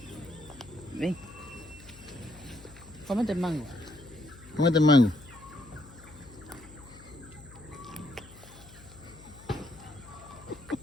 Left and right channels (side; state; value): left; noise; hum, 20 dB below the sound